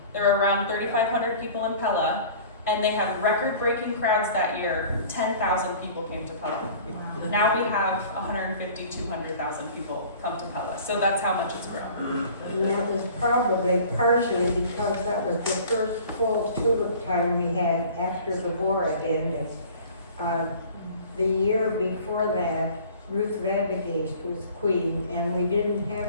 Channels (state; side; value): inverted; both; correlation -0.46